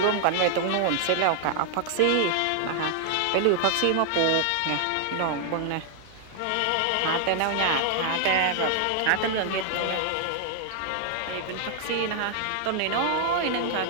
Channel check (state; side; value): different; both; correlation 0.00